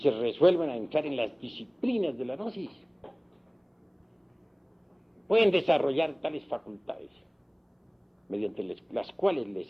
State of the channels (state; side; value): identical; both; correlation 1.00